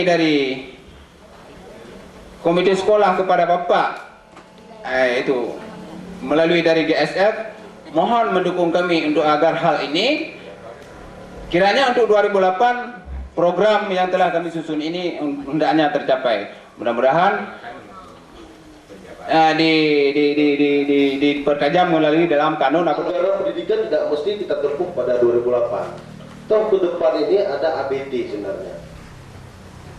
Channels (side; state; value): both; identical; correlation 1.00